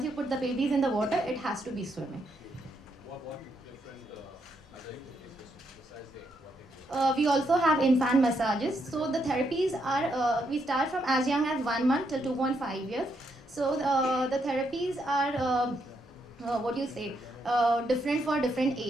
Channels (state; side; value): normal; both; correlation 0.77